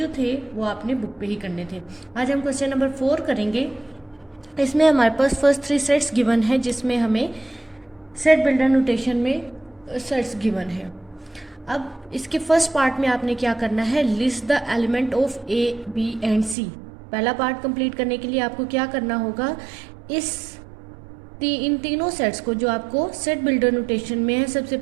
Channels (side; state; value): left; drops out; at 16.6 s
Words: थे वो आपने बुक पे ही करने थे. आज हम क्वेश्चन नंबर 4 करेंगे. इसमें हमारे पास फर्स्ट 3 सेट्स गिवन है, जिसमें हमें सेट बिल्डर नोटेशन में सेट्स गिवन है. अब इसके फर्स्ट पार्ट में आपने क्या करना है, list the element of A B and C. पहला पार्ट कंप्लीट करने के लिए आपको क्या करना होगा, इन तीनों सेट्स को जो आपको सेट बिल्डर नोटेशन में है, सबसे